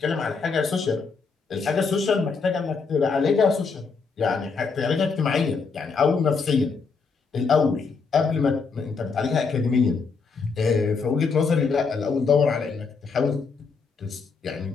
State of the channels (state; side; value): quieter; right; 4.9 dB